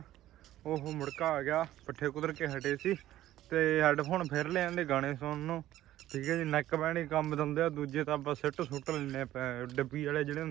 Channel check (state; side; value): quieter; left; 13.9 dB